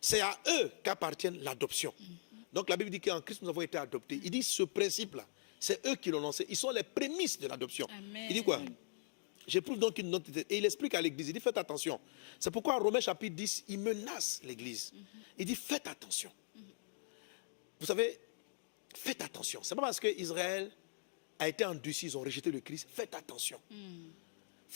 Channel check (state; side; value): silent; right; digital silence